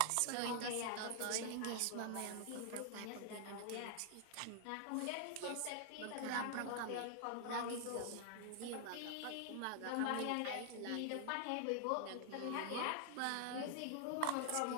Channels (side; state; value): both; different; correlation 0.00